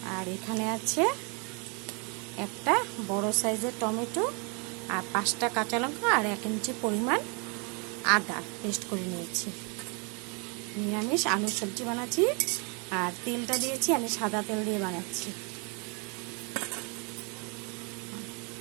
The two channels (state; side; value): quieter; left; 33.8 dB